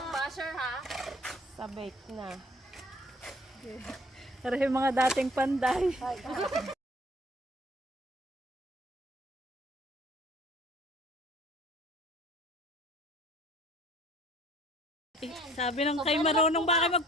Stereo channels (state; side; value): normal; both; correlation 0.54